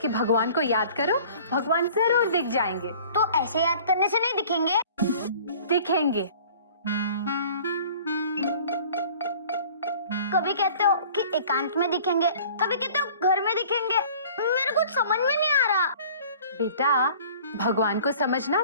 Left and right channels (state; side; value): inverted; both; correlation -0.48